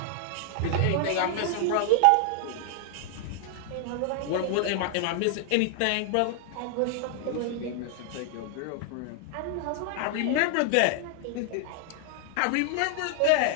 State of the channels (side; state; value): both; different; correlation 0.00